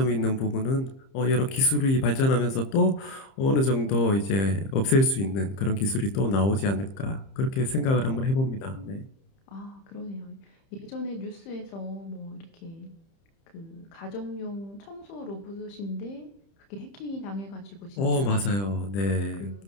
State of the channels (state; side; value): late; right; 30 ms